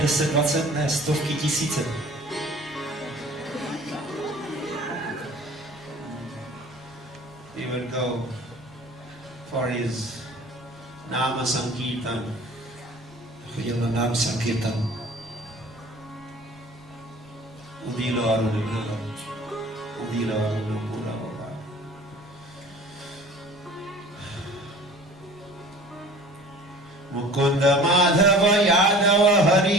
10, 20, ne, stovky, tisíce. He would go for his Nama Sankirtan. Chodil na Nama Sankirtan. Udilo Arunapura. Udilo Arunapura. Mukunda Madhava Yadava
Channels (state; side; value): normal; both; correlation 0.46